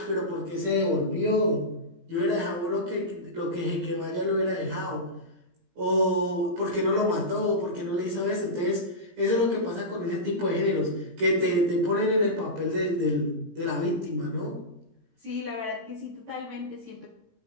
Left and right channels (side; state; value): left; late; 17 ms